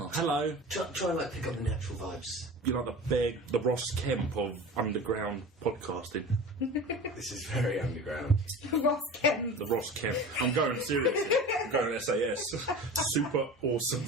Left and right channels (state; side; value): normal; both; correlation 0.35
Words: hello. Try and like pick up the natural vibes. You're like the Ross Kemp of underground podcasting. This is very underground. Ross Kemp. The Ross Kemp. I'm going seriously. I'm going SAS. Super awesome